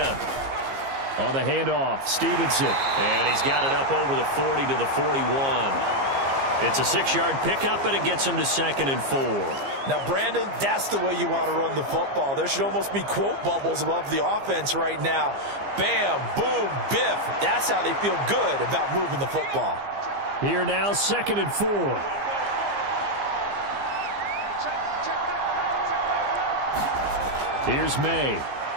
On the handoff, Stevenson. And he's got it up over the 40 to the 41. It's a 6-yard pickup, and it gets him to 2nd and 4. Now, Brandon, that's the way you want to run the football. There should almost be quote bubbles above the offense right now. Bam, boom, biff. That's how they feel good about moving the football. Here now, 2nd and 4. Here's May.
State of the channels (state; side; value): late; left; 15 ms